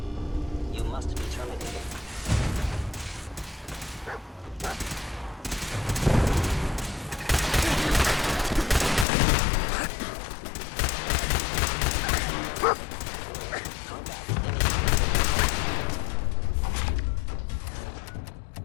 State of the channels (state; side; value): drops out; right; at 9.1 s